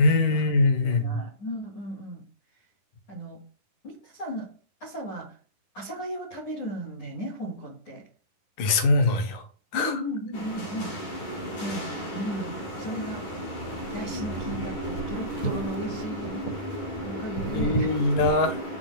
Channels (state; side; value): late; right; 11 ms